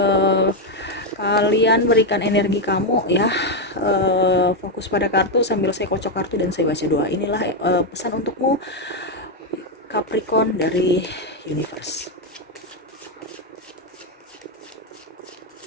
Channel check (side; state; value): both; normal; correlation 0.04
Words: Kalian berikan energi kamu ya, fokus pada kartu sambil saya kocok kartu dan saya baca doa. Inilah pesan untukmu Capricorn dari universe.